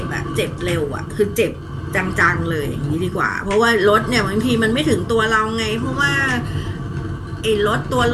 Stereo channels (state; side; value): identical; both; correlation 1.00